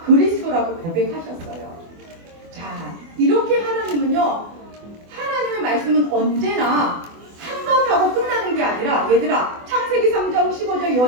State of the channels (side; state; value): left; late; 24 ms